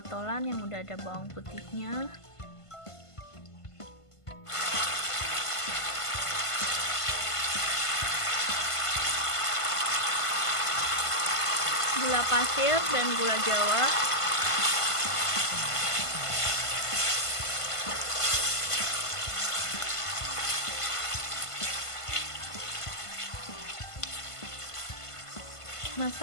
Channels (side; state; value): right; late; 1.5 ms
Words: yang udah ada bawang putihnya. Gula pasir dan gula jawa.